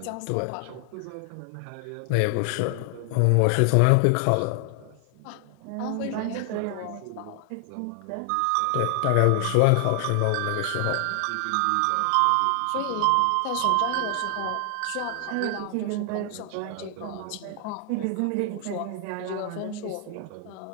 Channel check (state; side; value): different; both; correlation 0.00